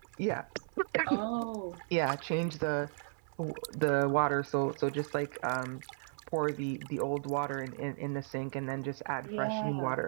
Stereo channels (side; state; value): left; silent; 55 dB below the other